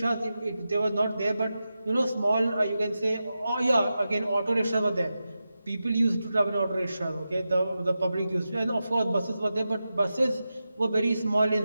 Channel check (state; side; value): inverted; both; correlation -0.91